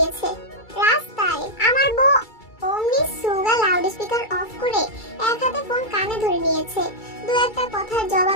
রাস্তায়। আমার বউ। অমনি সুগা লাউড স্পিকার অফ করে এক হাতে ফোন কানে ধরে নিয়েছে। দু একটা কথার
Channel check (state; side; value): late; right; 2.3 ms